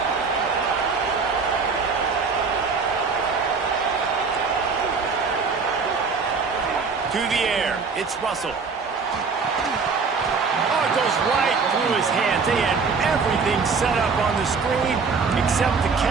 To the air, it's Russell. Oh, it goes right through his hands. They had everything set up on the screen except the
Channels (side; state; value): left; quieter; 5.0 dB